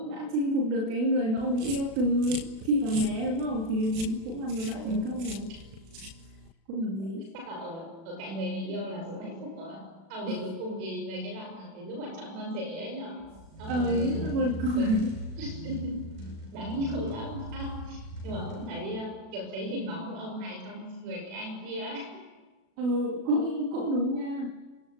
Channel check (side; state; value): left; late; 36 ms